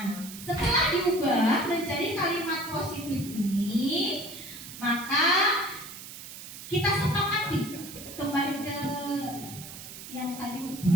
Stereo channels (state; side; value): noise; right; hiss, 12 dB below the sound